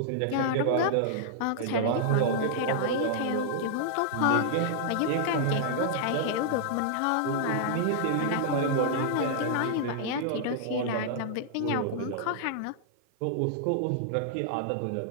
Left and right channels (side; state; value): both; different; correlation -0.01